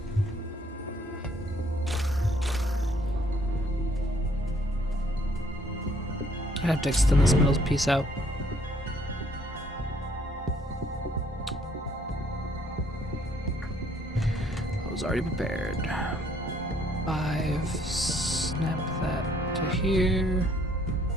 I have to extend this middle piece out. I was already prepared. 5, snap that to here.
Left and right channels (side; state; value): both; normal; correlation 0.64